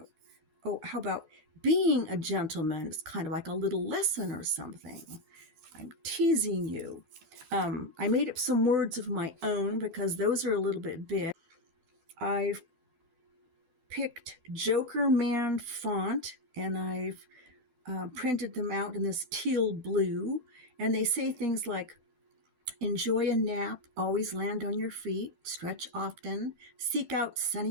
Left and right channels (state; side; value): late; left; 12 ms